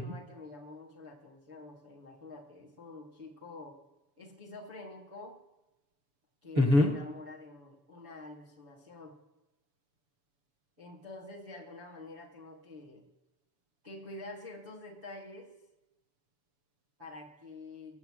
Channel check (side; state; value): left; late; 7.0 ms